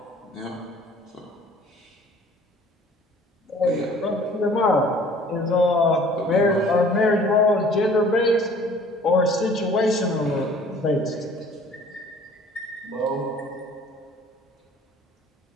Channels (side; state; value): both; normal; correlation 0.52